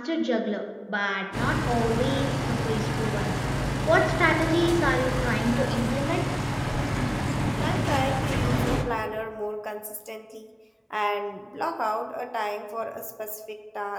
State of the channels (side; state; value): both; identical; correlation 1.00